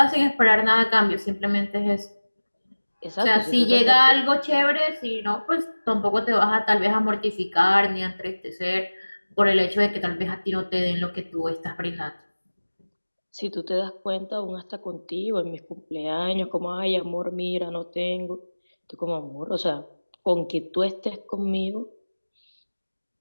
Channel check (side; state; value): both; inverted; correlation -1.00